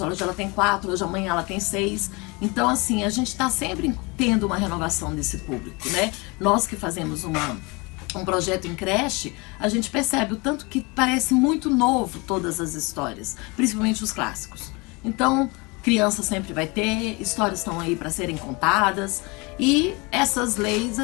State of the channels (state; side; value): quieter; right; 27.2 dB